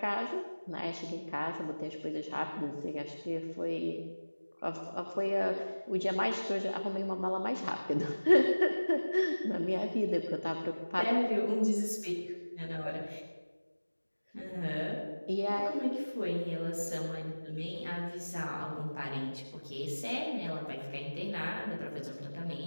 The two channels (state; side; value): inverted; both; correlation -1.00